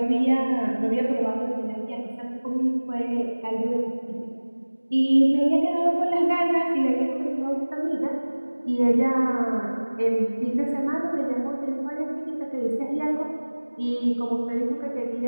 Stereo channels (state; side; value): inverted; both; correlation -1.00